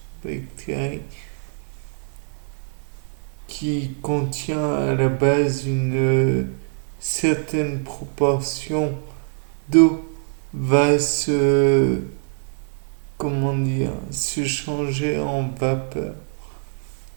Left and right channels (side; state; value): left; silent; digital silence